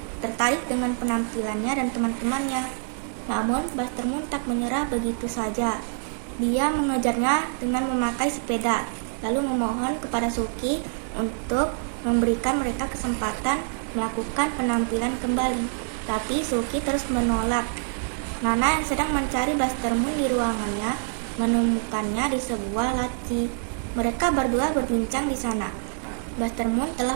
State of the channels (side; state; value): left; silent; 61 dB below the other